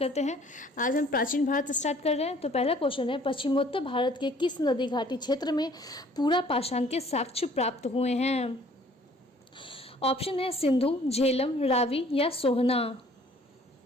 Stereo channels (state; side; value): normal; both; correlation 0.56